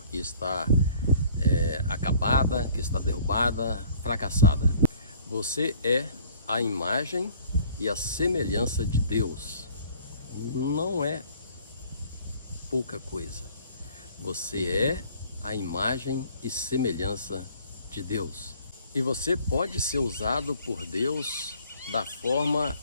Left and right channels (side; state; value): both; inverted; correlation -0.54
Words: que está acabada, que está derrubada, fracassada. Você é a imagem e a semelhança de Deus. Não é pouca coisa. Você é a imagem e semelhança de Deus. E você pode ser usado por Deus da forma